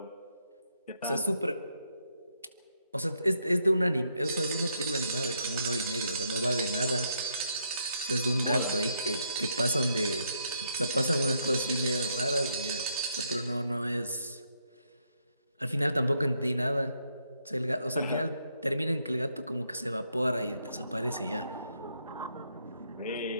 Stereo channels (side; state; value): both; inverted; correlation -0.76